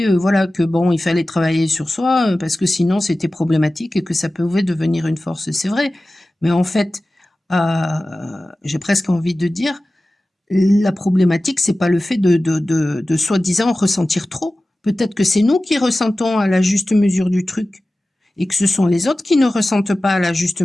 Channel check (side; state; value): both; normal; correlation 0.96